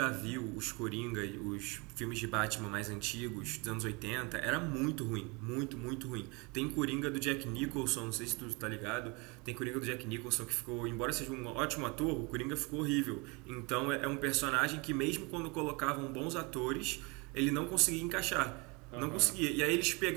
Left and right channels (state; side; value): quieter; left; 28.4 dB